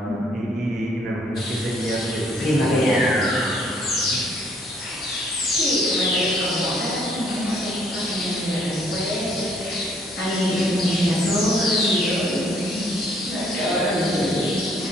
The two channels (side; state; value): both; normal; correlation 0.64